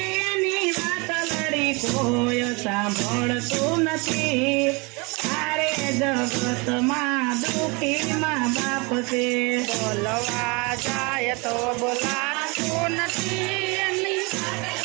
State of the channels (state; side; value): quieter; left; 28.6 dB